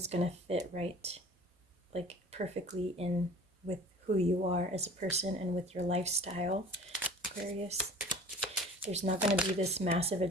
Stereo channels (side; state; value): both; normal; correlation 0.45